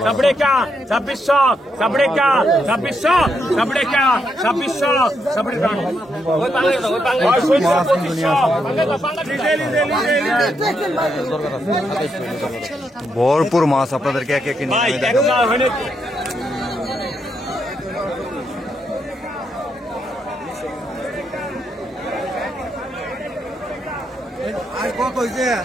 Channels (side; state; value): both; normal; correlation 0.79